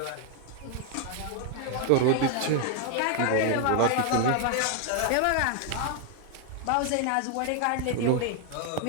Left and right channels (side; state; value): both; different; correlation 0.00